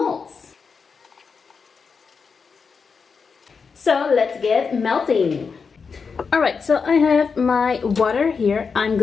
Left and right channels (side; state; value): right; quieter; 5.4 dB